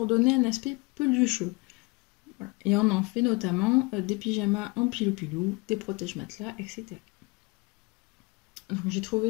donner un aspect pelucheux. Voilà. Et on en fait notamment des pyjamas en pilou-pilou, des protège-matelas, etc. Donc j'ai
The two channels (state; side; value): quieter; right; 26.0 dB